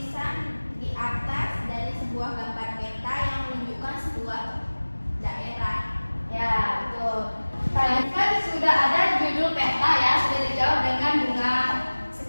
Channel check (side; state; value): both; inverted; correlation -1.00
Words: di atas dari sebuah gambar peta yang menunjukkan sebuah daerah. Ya, betul. Tadi kan sudah ada judul peta ya, sudah dijawab dengan Bunga.